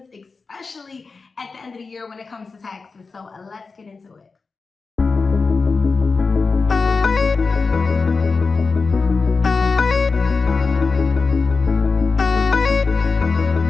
especially at the end of the year when it comes to taxes. So let's get into it.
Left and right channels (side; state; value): right; quieter; 4.4 dB